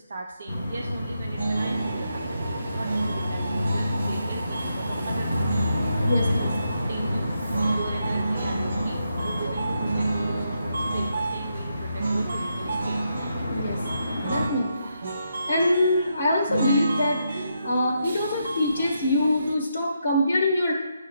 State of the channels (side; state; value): both; inverted; correlation -0.81